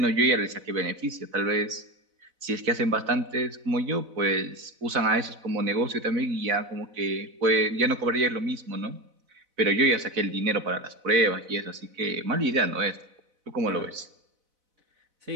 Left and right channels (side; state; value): left; late; 4.0 ms